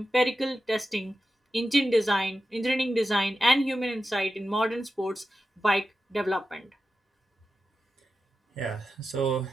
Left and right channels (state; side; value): normal; both; correlation 0.92